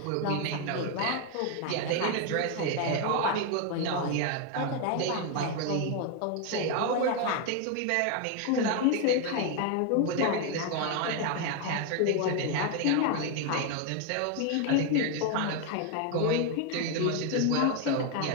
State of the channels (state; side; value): different; both; correlation 0.01